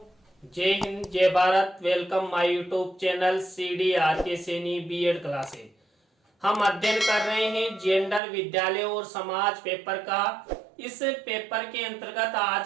जय हिंद, जय Bharat. Welcome my YouTube channel CD RK Saini B Ed classes. हम अध्ययन कर रहे हैं जेंडर, विद्यालय और समाज पेपर का। इस पेपर के अंतर्गत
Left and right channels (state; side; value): drops out; left; at 8.2 s